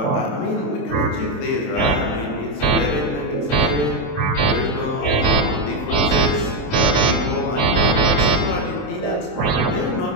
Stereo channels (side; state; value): right; late; 27 ms